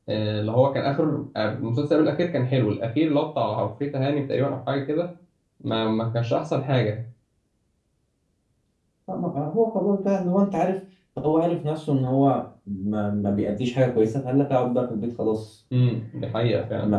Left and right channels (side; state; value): both; identical; correlation 1.00